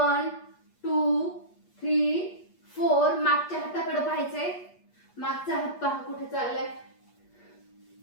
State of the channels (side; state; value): right; late; 8.4 ms